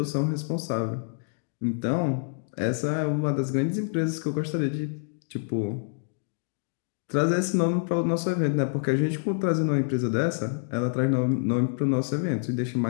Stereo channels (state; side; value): silent; right; digital silence